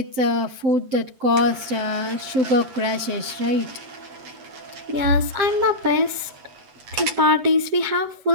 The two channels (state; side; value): late; left; 7.6 ms